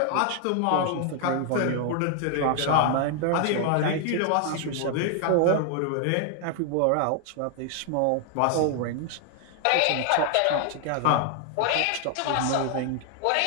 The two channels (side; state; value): both; different; correlation 0.00